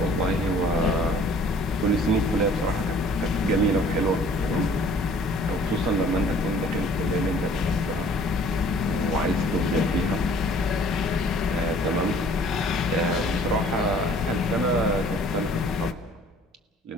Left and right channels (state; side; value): normal; both; correlation 0.54